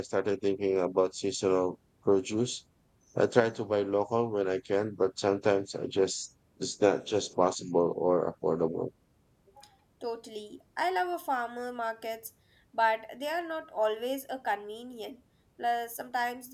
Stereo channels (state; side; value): identical; both; correlation 1.00